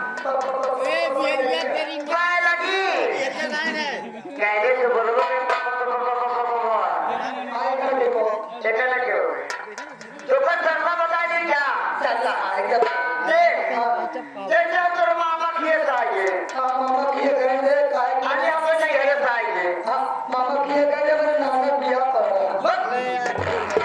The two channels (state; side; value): identical; both; correlation 1.00